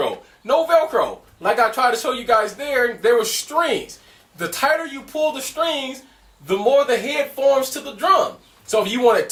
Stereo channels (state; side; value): identical; both; correlation 1.00